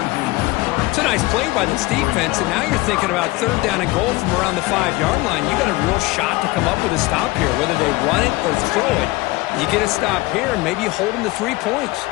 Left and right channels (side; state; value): right; quieter; 20.6 dB